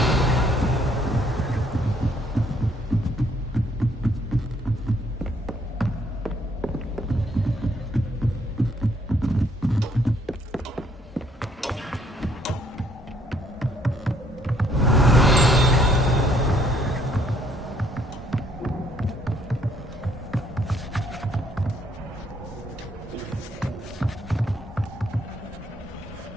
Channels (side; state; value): both; normal; correlation 0.66